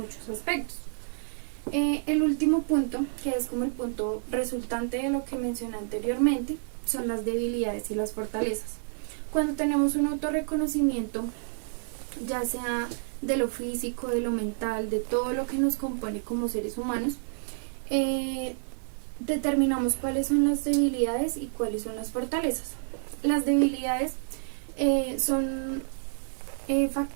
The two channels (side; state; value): left; silent; digital silence